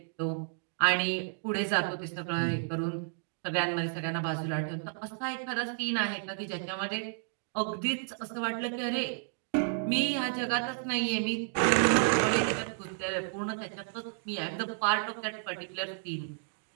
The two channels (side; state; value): left; silent; digital silence